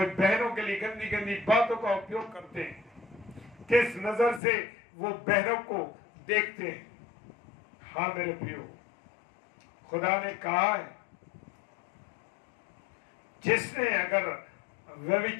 बहनों के लिए गंदी गंदी बातों का उपयोग करते हैं। किस नजर से वो बहनों को देखते हैं। हाँ मेरे प्रियो, खुदा ने कहा है, जिसने अगर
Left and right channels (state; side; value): drops out; right; at 4.4 s